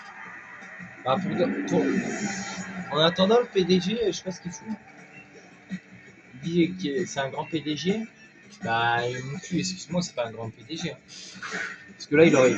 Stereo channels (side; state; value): both; identical; correlation 1.00